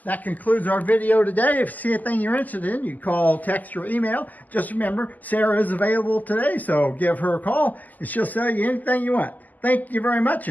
That concludes our video today. If you see anything you're interested in, you call, text, or email. Just remember, Sarah is available today, so give her a call, and she'll sell you anything you want. Thank you very much,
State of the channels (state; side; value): late; right; 0.081 ms